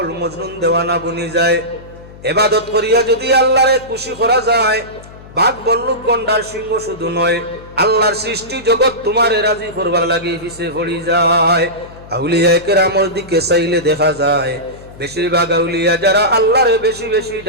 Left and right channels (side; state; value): left; noise; hum, 19 dB below the sound